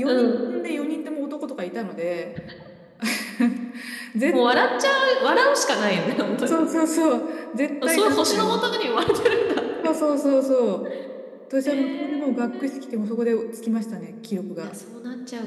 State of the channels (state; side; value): identical; both; correlation 1.00